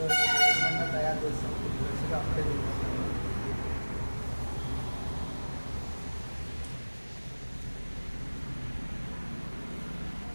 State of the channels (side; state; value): both; inverted; correlation -1.00